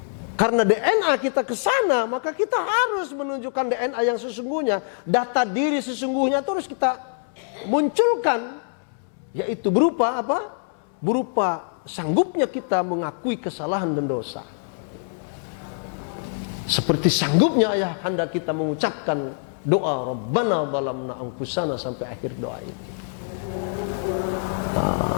Karena DNA kita ke sana, maka kita harus menunjukkan DNA yang sesungguhnya. Data diri sesungguhnya itu harus kita munculkan. Yaitu berupa apa? Berupa sanggupnya kita mengakui kesalahan dan dosa. Seperti sanggupnya ayahanda kita mengucapkan doa Rabbana dhalamna anfusana sampai akhir doa ini.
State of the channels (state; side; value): silent; right; 62 dB below the other